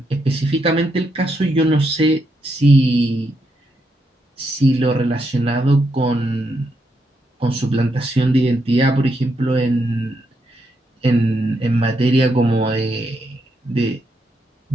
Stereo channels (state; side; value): normal; both; correlation 0.80